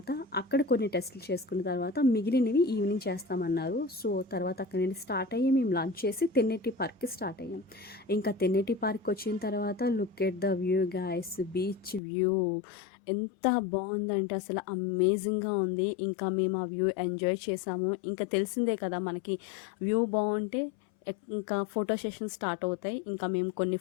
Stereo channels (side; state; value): right; drops out; at 12.0 s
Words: అక్కడ కొన్ని టెస్టులు చేసుకున్న తర్వాత మిగిలినవి ఈవినింగ్ చేస్తామన్నారు. సో తర్వాత అక్కడి నుండి స్టార్ట్ అయ్యి మేము లంచ్ చేసి తెన్నేటి పార్క్‌కి స్టార్ట్ అయ్యాం. ఇంకా తెన్నేటి పార్క్ వచ్చిన తర్వాత look at the view guys, beach view ఎంత బాగుందంటే అసలు అమేజింగ్‌గా ఉంది. ఇంకా మేము ఆ వ్యూ ఎంజాయ్ చేసాము. ఇంకా తెలిసిందే కదా మనకి వ్యూ బాగుంటే ఇంకా ఫోటో సెషన్ స్టార్ట్ అవుతాయి. ఇంకా మేము కొన్ని